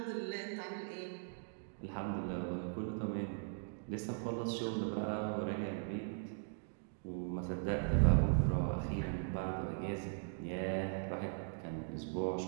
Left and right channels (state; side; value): silent; left; digital silence